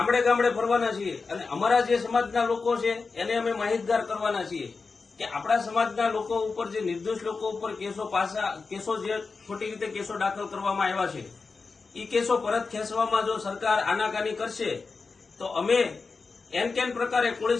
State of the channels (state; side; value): quieter; right; 4.4 dB